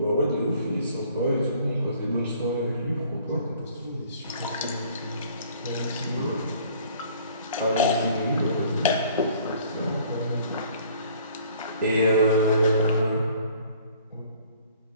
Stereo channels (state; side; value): inverted; both; correlation -0.55